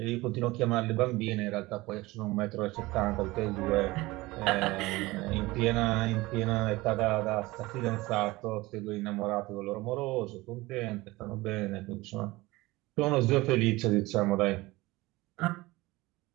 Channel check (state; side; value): quieter; left; 20.5 dB